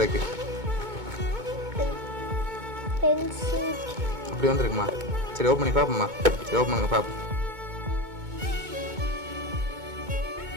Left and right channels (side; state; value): left; late; 2.2 ms